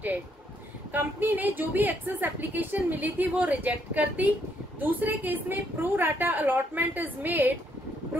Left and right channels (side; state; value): both; normal; correlation 0.72